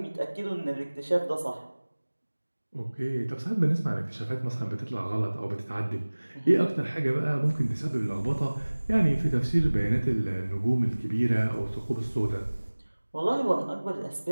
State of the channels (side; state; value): both; inverted; correlation -1.00